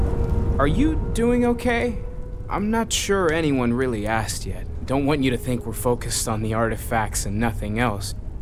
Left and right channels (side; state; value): both; identical; correlation 1.00